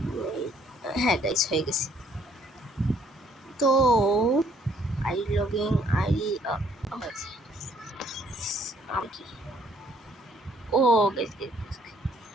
হ্যাঁ গাইস, হয়ে গেছে। তো আইডি লগইন আইডি কি ও গাইস,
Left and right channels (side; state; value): both; normal; correlation 0.64